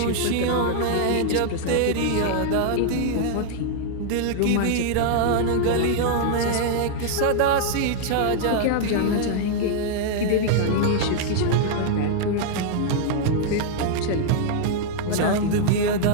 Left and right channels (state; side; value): different; both; correlation -0.01